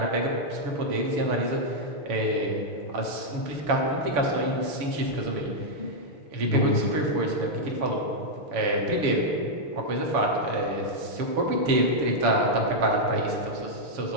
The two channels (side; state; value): left; late; 7.0 ms